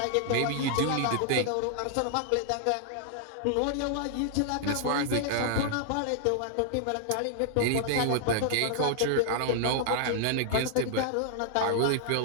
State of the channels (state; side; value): different; both; correlation -0.01